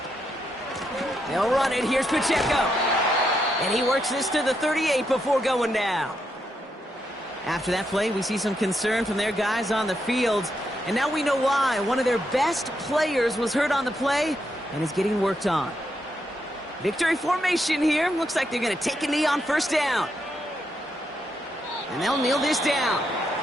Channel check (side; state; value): both; normal; correlation 0.81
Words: They'll run it. Here's Pacheco. And he works this to the 38 before going down. After that play, we see some concern from their guys on the field. And now we know why. One of their best players was hurt on the play and is getting worked on. Victory formation here. Looks like they're going to take a knee on 1st down. And they'll kneel this down.